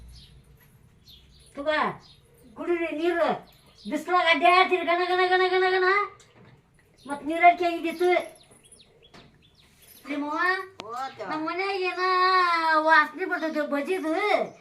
ತುಗ ಕುಡಿರಿ ನೀರು ಬಿಸಿಲಾಗ ಅಡ್ಡಾಡ್ತೀರಿ ಗಣ ಗಣ ಗಣ ಗಣ ಗಣ ಮತ್ತು ನೀರಡಿಕೆ ಆಗಿದ್ದಿತ್ತು ನಿಮ್ಮವ್ವ ನಮ್ಮ ಮನ್ಯಾಗ ಏನ ವಾಸನೆ ಬರ್ತೈತಿ ಬಜಿದು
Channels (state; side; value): identical; both; correlation 1.00